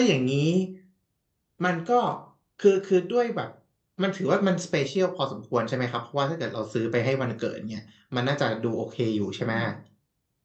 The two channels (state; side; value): identical; both; correlation 1.00